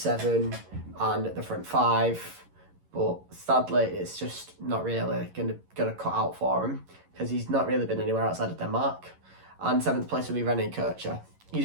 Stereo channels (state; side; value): late; left; 11 ms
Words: and the front 5, but sadly it's just not really gonna cut out for him because he's not really been anywhere outside of Denmark. And 7th place will be René Kircher. He's